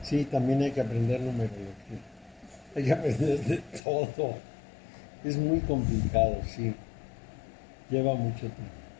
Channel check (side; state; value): right; drops out; at 3.8 s